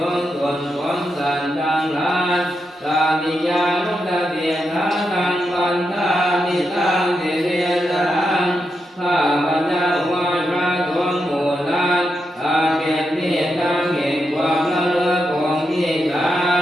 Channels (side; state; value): both; normal; correlation 0.85